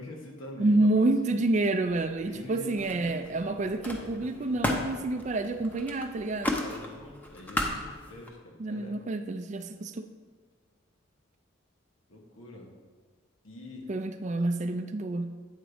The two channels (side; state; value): both; normal; correlation 0.63